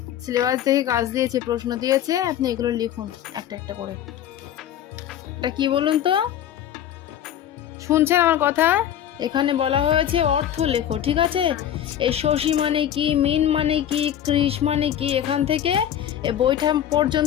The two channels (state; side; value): quieter; right; 10.6 dB